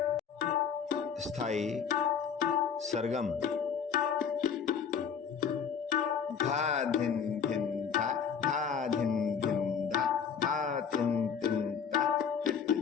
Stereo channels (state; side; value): quieter; right; 7.0 dB